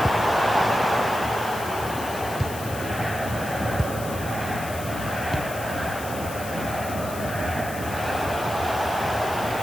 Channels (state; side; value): noise; left; hiss, 12 dB below the sound